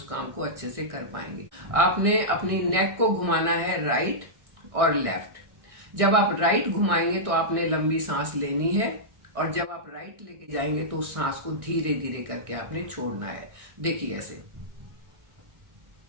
काम को अच्छे से कर पाएंगे। आपने अपनी नेक को घुमाना है राइट और लेफ्ट। जब आप राइट घुमाएंगे तो आपने लंबी सांस लेनी है, और जब आप राइट लेके जाएंगे तो उस सांस को धीरे धीरे करके आपने छोड़ना है। देखिए ऐसे।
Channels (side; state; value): left; late; 1.6 ms